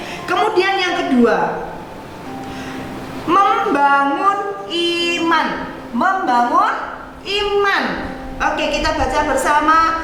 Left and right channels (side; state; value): both; identical; correlation 1.00